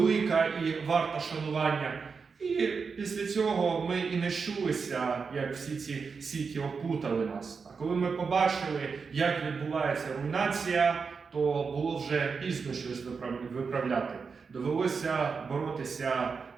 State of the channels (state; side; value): quieter; left; 5.3 dB